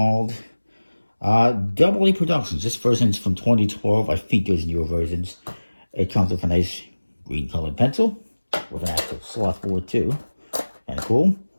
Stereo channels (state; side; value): inverted; both; correlation -1.00